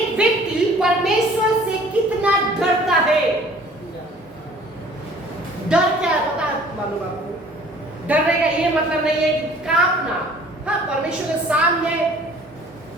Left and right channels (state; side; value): normal; both; correlation 0.52